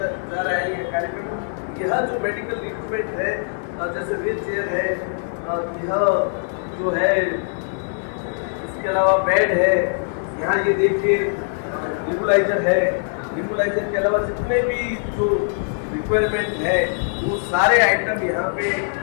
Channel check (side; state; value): right; silent; 64 dB below the other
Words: रहा है ये कार्यक्रम। यह जो मेडिकल इक्विपमेंट है, जैसे व्हील चेयर है, यह जो है, इसके अलावा बेड है, यहाँ ये देखिए नेबुलाइजर है। नेबुलाइजर के अलावा जितने भी जो रिक्वायरमेंट है वो सारे आइटम यहाँ पे